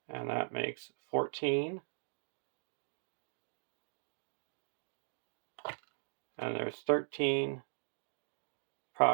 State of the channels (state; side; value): silent; left; digital silence